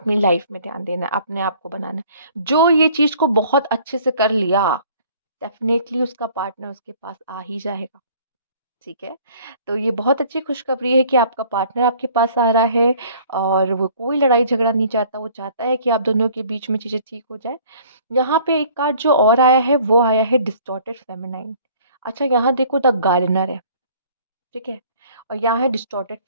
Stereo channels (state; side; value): inverted; both; correlation -0.54